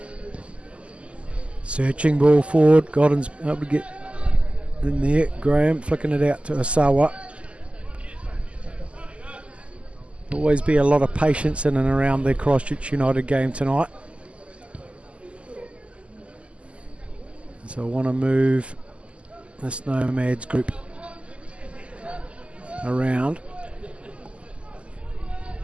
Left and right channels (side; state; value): left; late; 0.056 ms